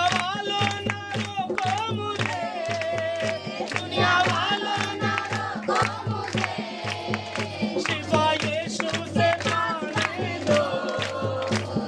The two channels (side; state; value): both; identical; correlation 1.00